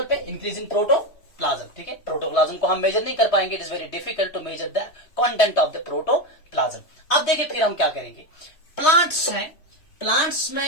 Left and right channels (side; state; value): right; late; 3.2 ms